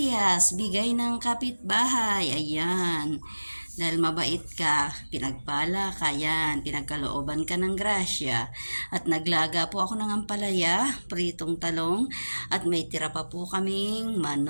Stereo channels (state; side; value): inverted; both; correlation -1.00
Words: bigay ng kapitbahay. Ayan. Dahil mabait ka, pinagpala ka, yan, pinagkalooban ka ng grasya. At naglaga po ako ng ampalaya, pritong talong, at may tira pa po kaming